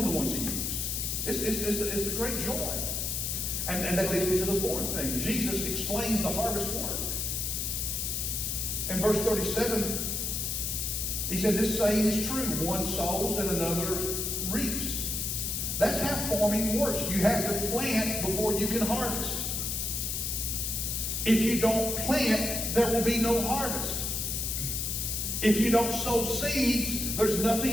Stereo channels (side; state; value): left; noise; hiss, 1 dB below the sound